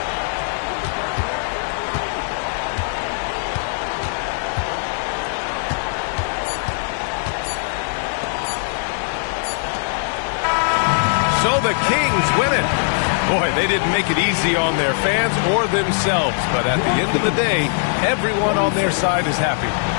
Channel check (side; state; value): right; silent; 55 dB below the other